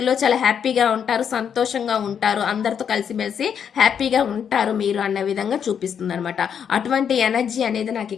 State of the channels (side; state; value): right; quieter; 7.8 dB